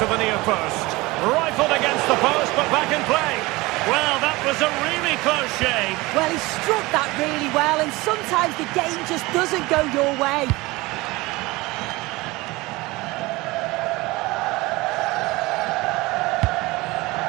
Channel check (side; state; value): left; quieter; 21.7 dB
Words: the near post. Rifled against the post, but back in play. Well, that was a really close shave. Well, he struck that really well, and sometimes the game just doesn't go your way.